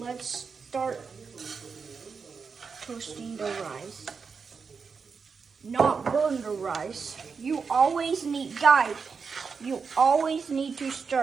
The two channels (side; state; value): left; quieter; 5.4 dB